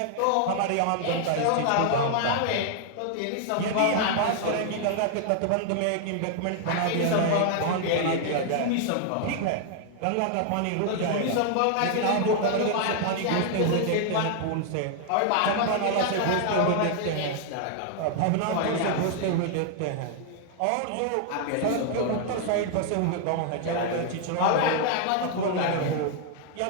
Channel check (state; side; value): different; both; correlation 0.00